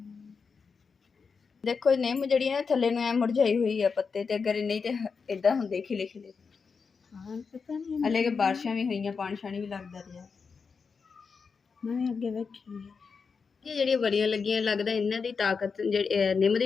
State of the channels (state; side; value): quieter; right; 5.3 dB